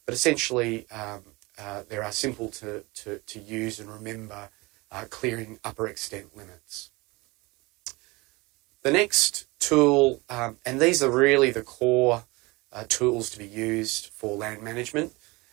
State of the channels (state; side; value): quieter; left; 24.0 dB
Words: But essentially, they are simple to use and remember, clearing upper extent limits. The next tool, and these are really the core tools to be used for land management,